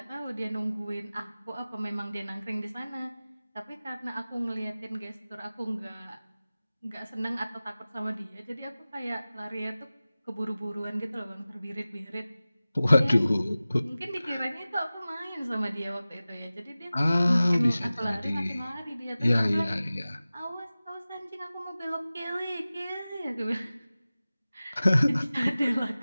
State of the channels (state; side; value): inverted; both; correlation -0.97